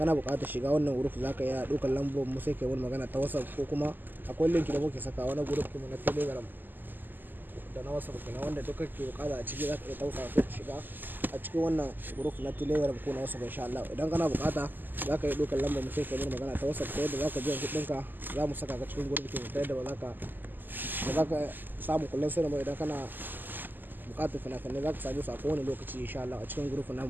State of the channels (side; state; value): left; late; 0.089 ms